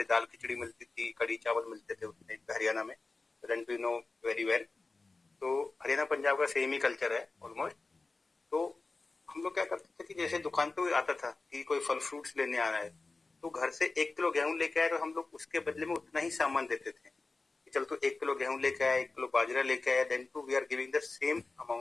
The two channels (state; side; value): quieter; right; 3.6 dB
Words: दाल खिचड़ी मिलती थी, कड़ी चावल मिलते थे उस टाइम पे हरियाणा में, then too know very well. तो हरियाणा पंजाब का सेम ही कल्चर है ऑलमोस्ट। तो हम लोग क्या करते थे कि जैसे दुकान पे कोई आता था कि कोई फल फ्रूट्स लेने आ रहा है, तो घर से 1 किलो गेहूं लेके आए, तो हम लोग उसके बदले में उतना ही सामान देते थे। चल तो 1 किलो गेहूं लेके आया, 1 किलो बाजरा लेके आया, then too we are giving the same